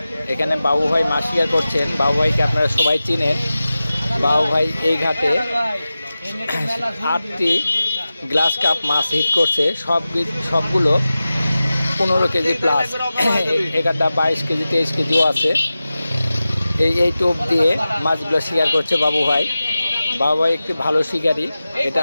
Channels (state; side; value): inverted; both; correlation -0.95